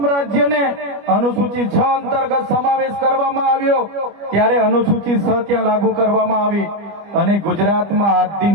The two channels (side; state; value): left; late; 25 ms